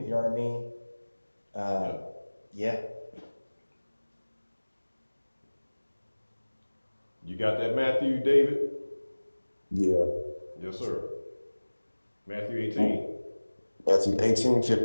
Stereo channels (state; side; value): inverted; both; correlation -1.00